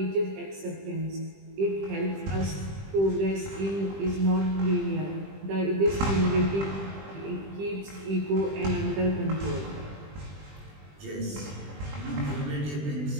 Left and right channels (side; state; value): left; late; 20 ms